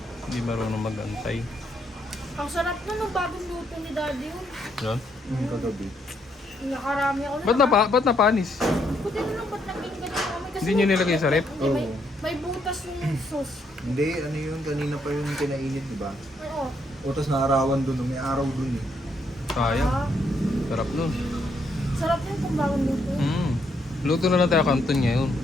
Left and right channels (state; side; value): normal; both; correlation 0.74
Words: Hindi marunong mag-antay. Ang sarap na nung bagong luto ni Daddy yun. Yan. Kagabi. Nakarami ako. Ba't napanis? Buti na lang, ba't naging ganyan kami? Kasi Hindi nyo nilagay sa rep? Hindi, may, Oo. may butas yung sauce. Hindi, ano yun, kanina pa yung pinainit, di ba? Oo. Utos na arawan dun, may araw dun eh. Sayang. Ah, Sarap nun. sarap yun kung bagong luto. Luto na lang tayo kanton ngayon.